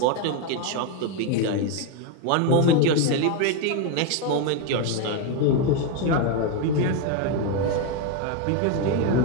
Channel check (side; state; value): both; different; correlation 0.02